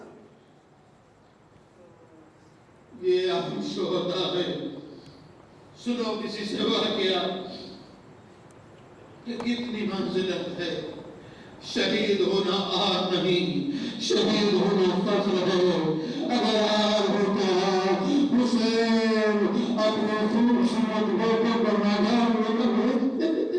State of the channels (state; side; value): identical; both; correlation 1.00